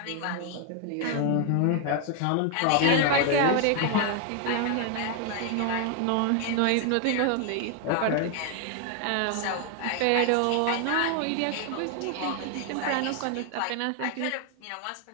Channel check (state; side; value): different; both; correlation 0.01